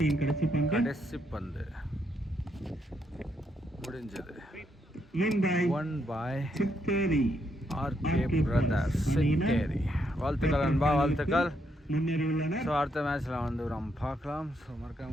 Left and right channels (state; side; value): normal; both; correlation 0.77